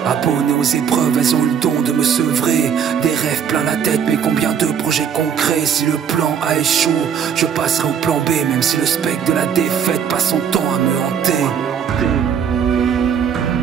Abonné aux épreuves, elles ont le don de me sevrer. Des rêves plein la tête, mais combien de projets concrets. Si le plan A échoue, je passerai au plan B. Même si le spectre de la défaite passe son temps à me hanter.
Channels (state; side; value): quieter; left; 7.8 dB